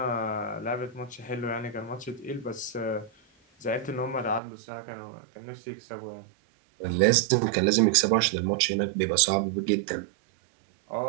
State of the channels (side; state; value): left; drops out; at 4.4 s